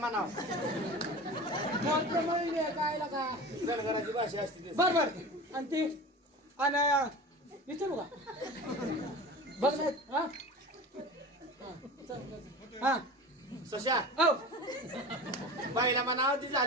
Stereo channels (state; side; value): normal; both; correlation 0.34